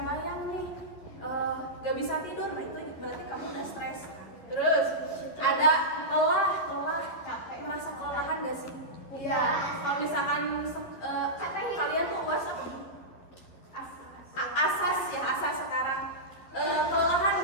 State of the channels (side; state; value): right; late; 12 ms